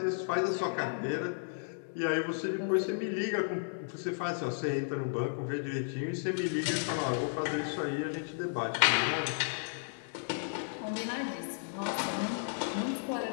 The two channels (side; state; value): right; silent; digital silence